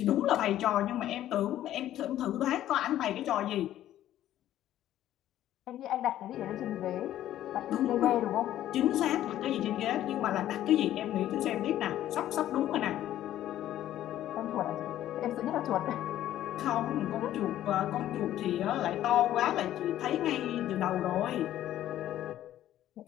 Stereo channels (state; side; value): quieter; right; 12.7 dB